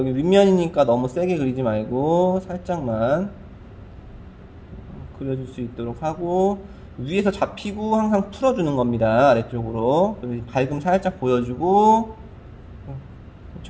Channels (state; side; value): identical; both; correlation 1.00